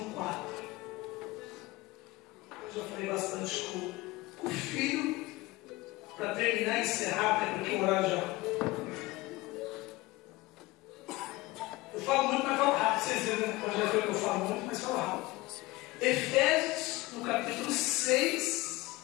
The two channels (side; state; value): right; quieter; 20.7 dB